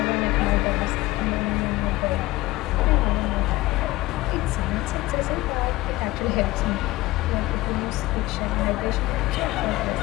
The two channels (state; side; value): quieter; right; 18.9 dB